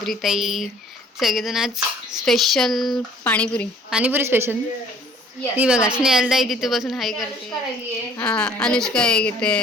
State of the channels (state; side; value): normal; both; correlation 0.54